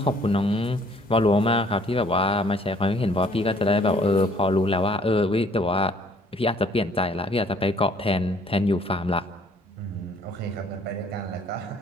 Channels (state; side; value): normal; both; correlation 0.59